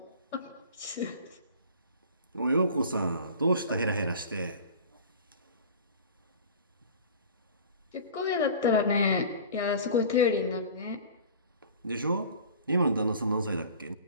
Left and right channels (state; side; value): inverted; both; correlation -0.41